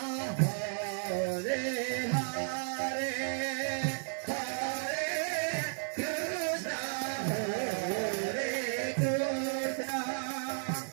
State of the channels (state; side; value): silent; left; 55 dB below the other